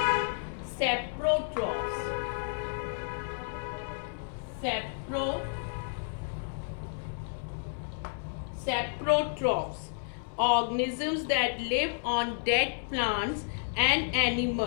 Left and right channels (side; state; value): right; silent; 57 dB below the other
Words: saprotrophs. Saprotrophs, organisms that live on dead plants and